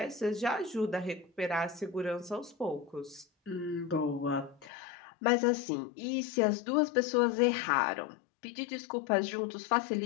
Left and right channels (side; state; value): right; drops out; at 4.7 s